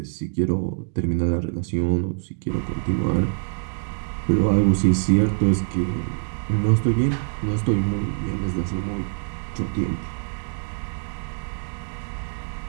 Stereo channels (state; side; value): silent; left; digital silence